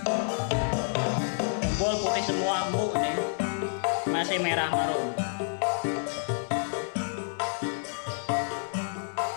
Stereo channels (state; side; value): silent; right; digital silence